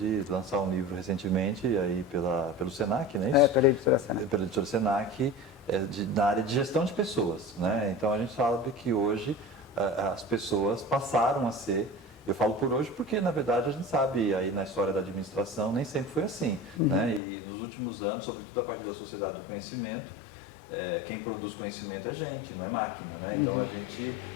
lançar um livro recentemente, aí pelo Senac, não é isso? Pela editora Senac. Pela editora Senac, na área de gestão de pessoas, né? Então a gente sabe que hoje as pessoas passaram a ser, eu falo por hoje porque na verdade a gente sabe, aí na história da administração nem sempre foi assim, né? E nos últimos anos, sobretudo a partir da sociedade do conhecimento, quem produz conhecimento é gente, não é máquina, né? Então a gente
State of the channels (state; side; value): drops out; right; at 17.2 s